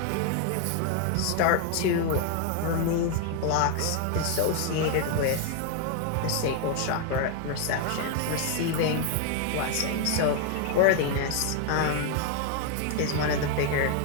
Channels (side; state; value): both; different; correlation 0.00